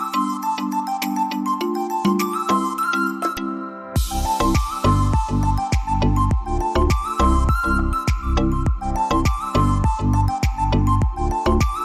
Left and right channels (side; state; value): both; identical; correlation 1.00